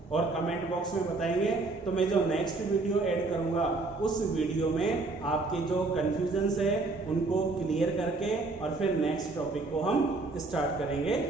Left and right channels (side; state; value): left; quieter; 3.4 dB